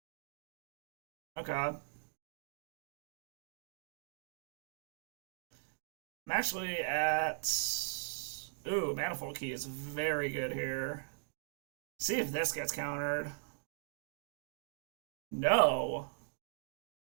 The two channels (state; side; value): silent; left; digital silence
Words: Okay. I'm actually at... Ooh, Manifold Key is very good here. See if this gets countered. No.